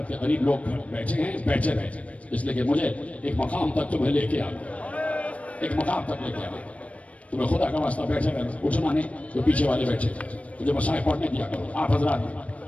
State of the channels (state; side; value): late; right; 0.065 ms